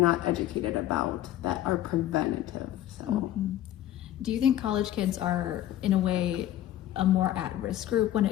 educated about that are preventative. So do you think college kids are, in a way, a more at-risk group when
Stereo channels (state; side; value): quieter; right; 12.9 dB